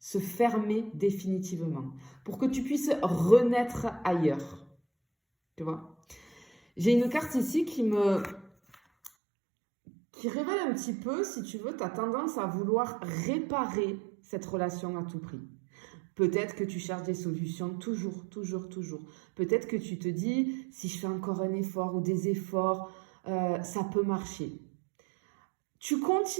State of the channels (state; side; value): drops out; left; at 9.1 s